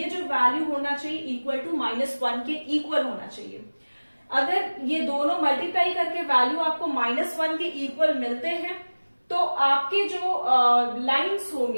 जो वैल्यू होना चाहिए इक्वल टू -1 के इक्वल होना चाहिए। अगर ये दोनों मल्टीप्लाई करके वैल्यू आपको -1 के इक्वल मिलते हैं तो आपके जो लाइंस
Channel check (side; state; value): both; inverted; correlation -1.00